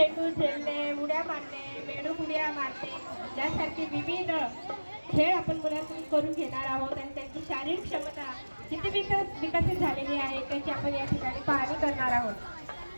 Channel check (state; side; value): inverted; both; correlation -1.00